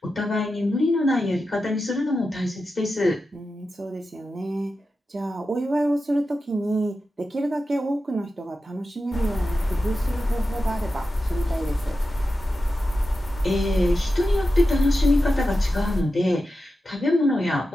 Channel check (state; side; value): normal; both; correlation 0.91